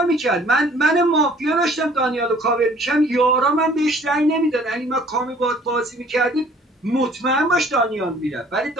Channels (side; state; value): both; normal; correlation 0.54